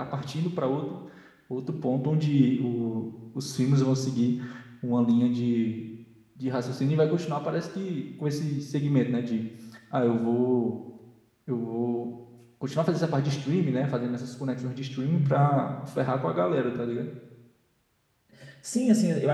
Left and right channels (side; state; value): both; identical; correlation 1.00